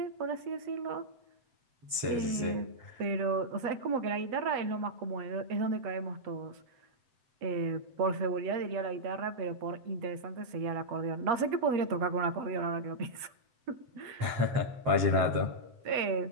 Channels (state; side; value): late; left; 7.8 ms